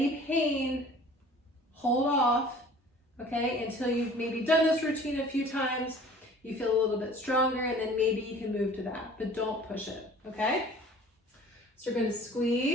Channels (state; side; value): normal; both; correlation 0.48